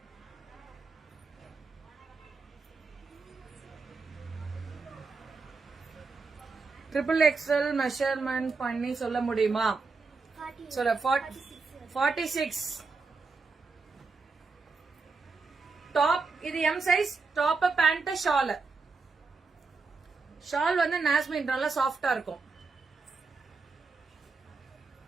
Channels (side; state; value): left; quieter; 4.3 dB